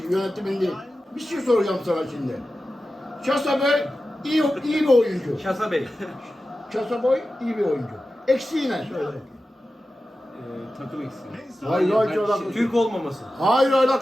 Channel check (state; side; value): normal; both; correlation 0.93